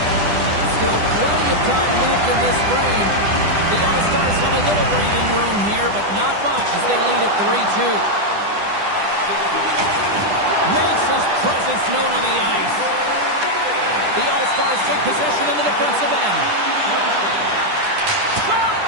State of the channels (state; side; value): late; left; 10 ms